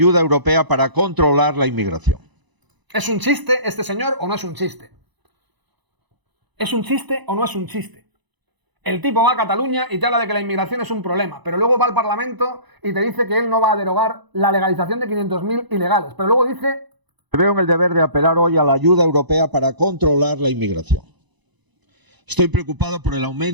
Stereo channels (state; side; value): late; left; 1.0 ms